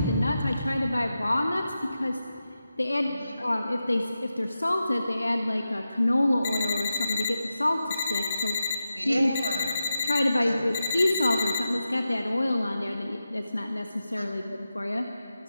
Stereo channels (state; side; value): inverted; both; correlation -0.91